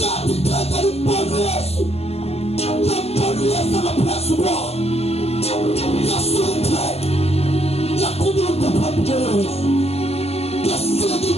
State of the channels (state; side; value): late; right; 0.30 ms